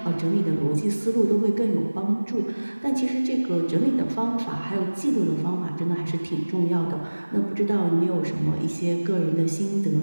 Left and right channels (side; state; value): both; inverted; correlation -1.00